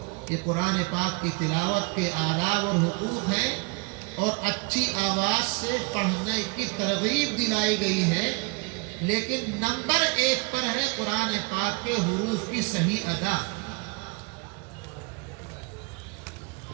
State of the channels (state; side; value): quieter; left; 30.2 dB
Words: یہ قرآن پاک کی تلاوت کے آداب اور حقوق ہیں، اور اچھی آواز سے پڑھنے کی ترغیب دلائی گئی ہے، لیکن نمبر 1 پر ہے قرآن پاک کے حروف کی صحیح ادا۔